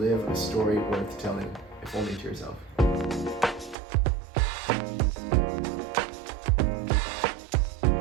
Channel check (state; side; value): drops out; left; at 3.8 s